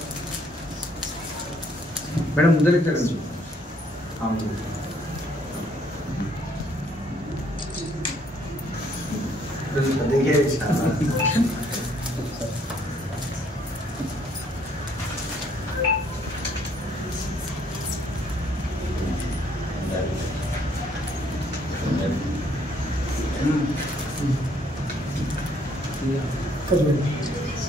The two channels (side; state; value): both; normal; correlation 0.66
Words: మేడం ముందరికి తెచ్చు